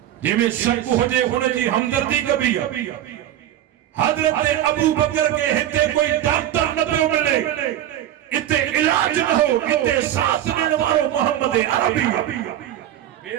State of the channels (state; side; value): quieter; left; 12.0 dB